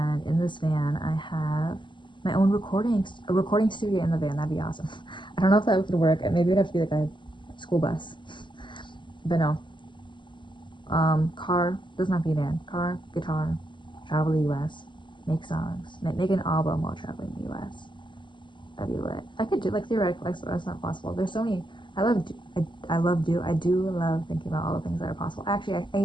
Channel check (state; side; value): late; right; 0.23 ms